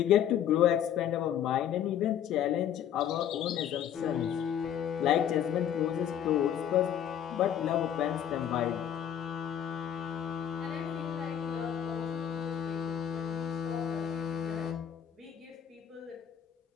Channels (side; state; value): right; quieter; 9.7 dB